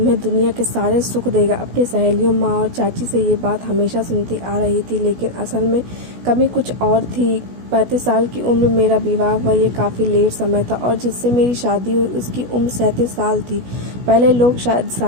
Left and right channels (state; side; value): late; left; 16 ms